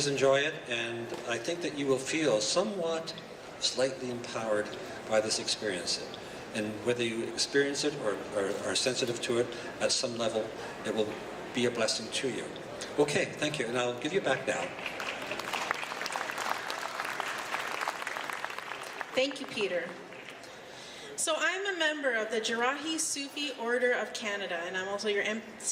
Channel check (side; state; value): both; identical; correlation 1.00